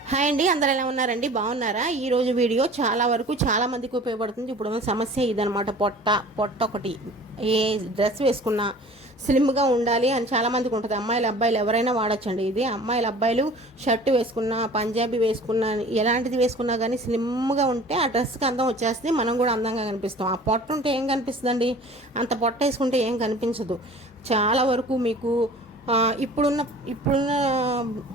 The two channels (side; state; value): both; normal; correlation 0.45